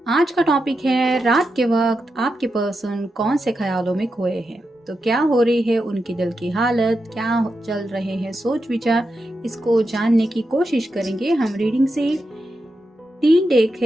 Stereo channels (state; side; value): normal; both; correlation 0.87